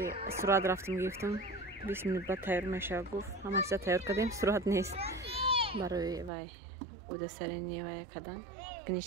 سرعت رفتم گرفتم 20 minut بعد تیار میشه گفت همه چیز تیار کردیم. سرعت نیست برای وای بوده سرینی وای کردن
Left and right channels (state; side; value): drops out; left; at 6.3 s